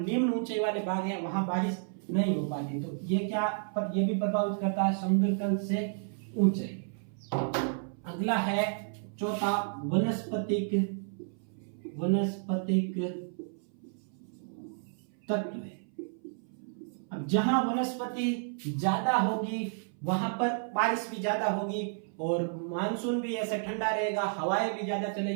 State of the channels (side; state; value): left; silent; 57 dB below the other